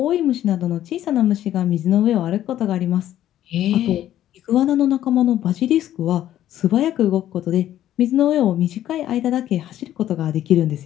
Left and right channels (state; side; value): quieter; right; 12.3 dB